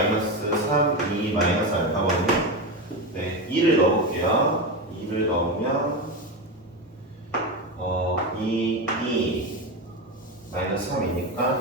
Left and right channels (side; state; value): both; normal; correlation 0.17